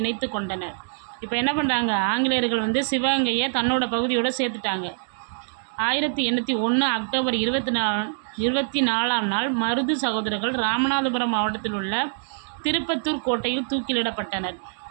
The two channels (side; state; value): left; silent; digital silence